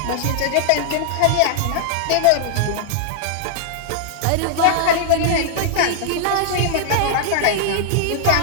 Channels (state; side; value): different; both; correlation -0.01